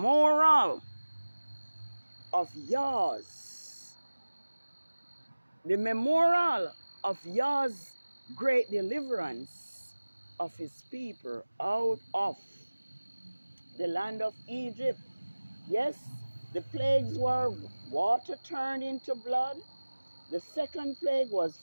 of Yah's. The memorial of Yah's great deliverance of his people out of the land of Egypt. Yes, the plagues were water turned into blood. The second plague was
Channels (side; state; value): both; inverted; correlation -1.00